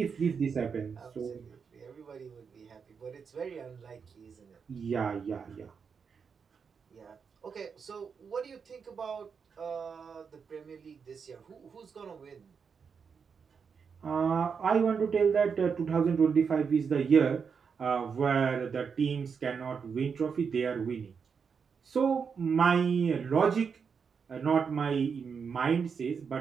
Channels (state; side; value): quieter; left; 6.1 dB